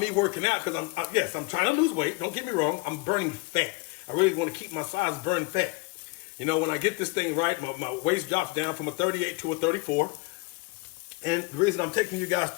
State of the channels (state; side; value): quieter; right; 26.1 dB